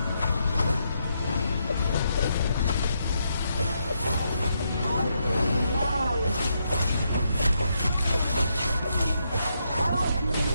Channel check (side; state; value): both; inverted; correlation -0.79